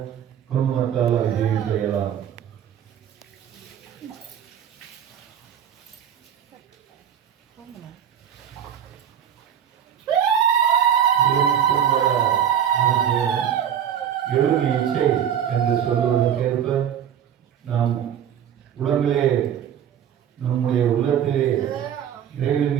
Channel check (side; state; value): left; quieter; 9.2 dB